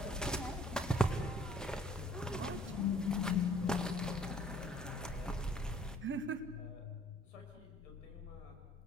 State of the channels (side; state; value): both; normal; correlation 0.58